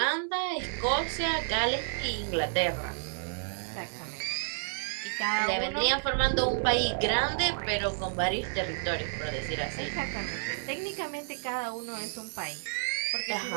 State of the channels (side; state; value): left; silent; 57 dB below the other